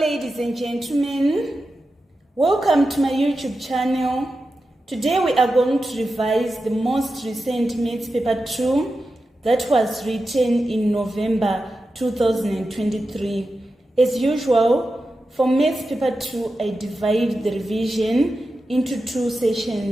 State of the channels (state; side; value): normal; both; correlation 0.91